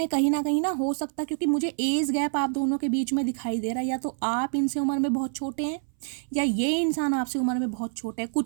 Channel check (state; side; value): silent; left; 60 dB below the other